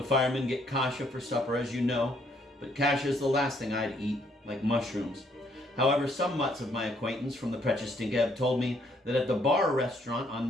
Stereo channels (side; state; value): both; normal; correlation 0.68